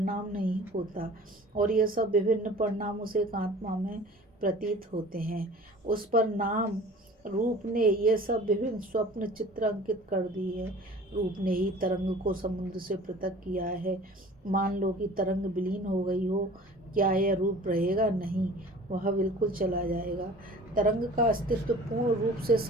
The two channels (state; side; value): normal; both; correlation 0.45